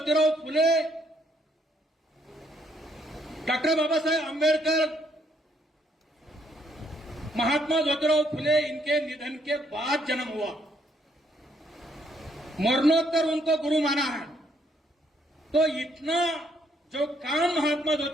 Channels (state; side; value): normal; both; correlation 0.70